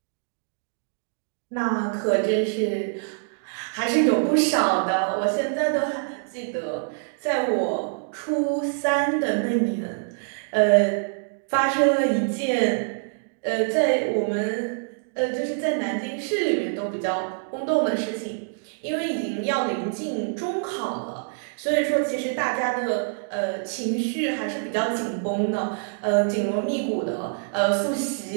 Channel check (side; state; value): left; silent; digital silence